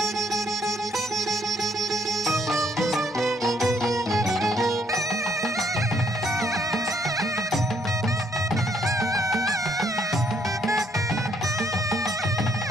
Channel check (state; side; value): normal; both; correlation 0.69